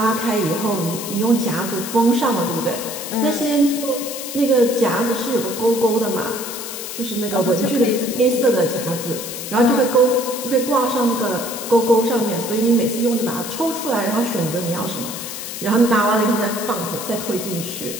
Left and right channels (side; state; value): left; noise; hiss, 8 dB below the sound